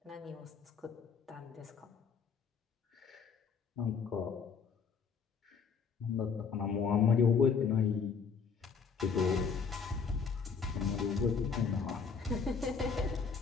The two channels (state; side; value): quieter; right; 5.8 dB